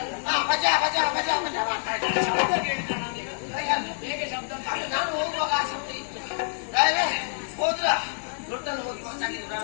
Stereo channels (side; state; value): right; silent; digital silence